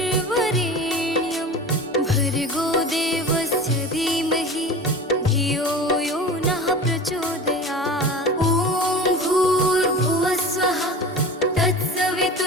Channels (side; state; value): both; normal; correlation 0.34